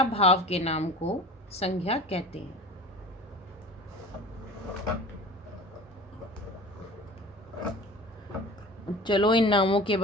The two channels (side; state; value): both; normal; correlation 0.39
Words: भाव के नाम को संज्ञा कहते हैं। चलो इन नामों के